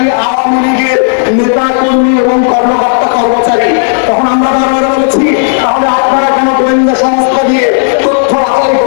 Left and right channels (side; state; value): right; silent; digital silence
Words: আওয়ামী লীগের নেতা কর্মী এবং কর্মকর্তা কর্মচারী। তখন আমরা বারবার বলেছি তাহলে আপনারা কেন গোয়েন্দা সংস্থা দিয়ে তথ্য বাছাই